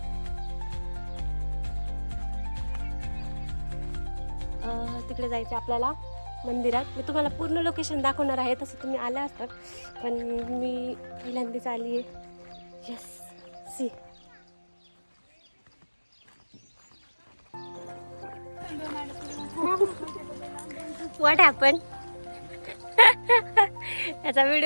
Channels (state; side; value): inverted; both; correlation -1.00